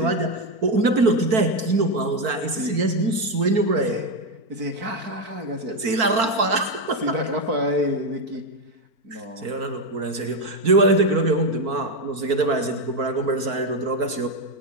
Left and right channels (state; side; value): late; left; 4.5 ms